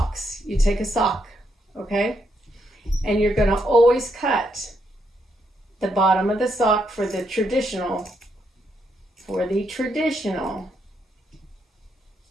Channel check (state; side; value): normal; both; correlation 0.77